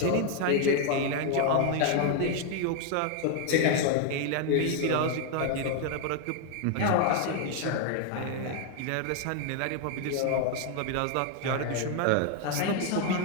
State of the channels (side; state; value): both; different; correlation 0.01